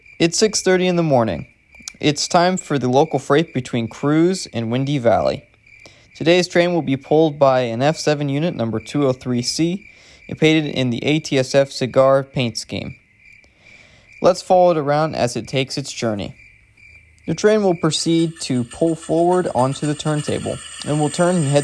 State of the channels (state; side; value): identical; both; correlation 1.00